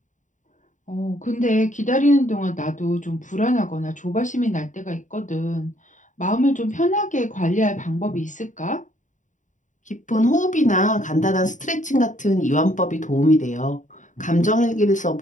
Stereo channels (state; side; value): late; right; 0.36 ms